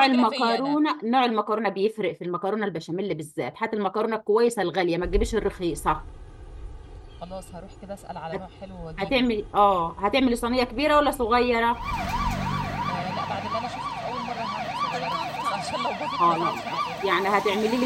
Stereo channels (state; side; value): identical; both; correlation 1.00